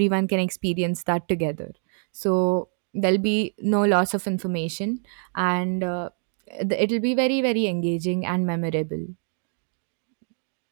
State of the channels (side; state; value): left; silent; 62 dB below the other